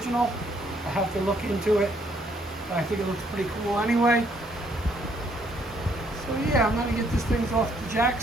I have to look into it, but I think it looks pretty cool anyway. So yeah, I'm gonna get this thing off the jack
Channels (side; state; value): both; normal; correlation 0.68